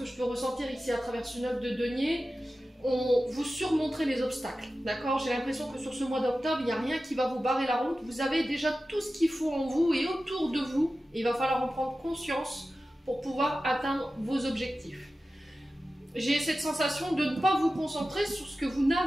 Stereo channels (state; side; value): normal; both; correlation 0.94